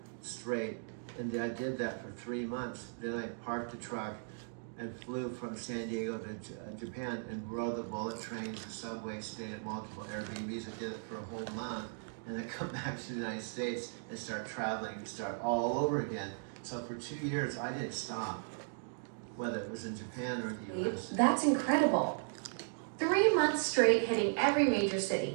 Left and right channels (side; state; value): left; silent; digital silence